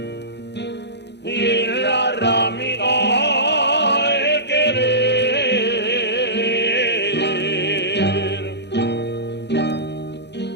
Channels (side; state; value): right; late; 0.50 ms